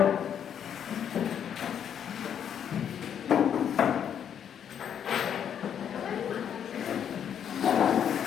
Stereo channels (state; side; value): quieter; right; 8.7 dB